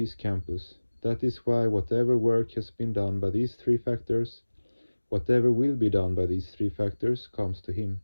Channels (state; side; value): inverted; both; correlation -1.00